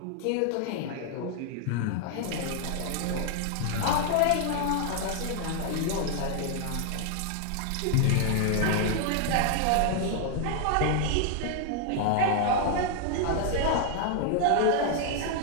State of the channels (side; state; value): both; different; correlation 0.00